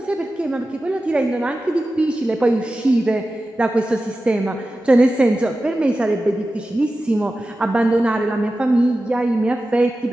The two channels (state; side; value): normal; both; correlation 0.94